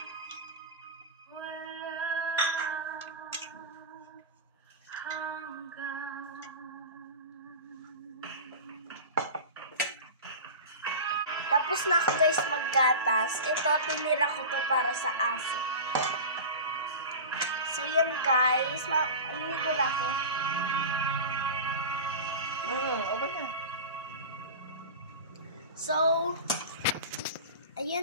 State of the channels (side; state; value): both; inverted; correlation -0.30